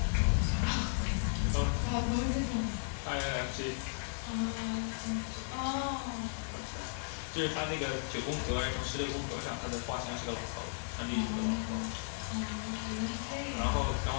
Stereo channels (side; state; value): right; silent; 54 dB below the other